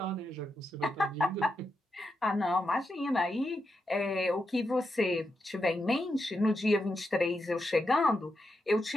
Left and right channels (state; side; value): normal; both; correlation 0.85